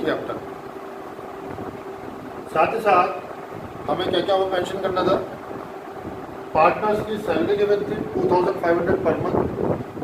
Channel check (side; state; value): both; identical; correlation 1.00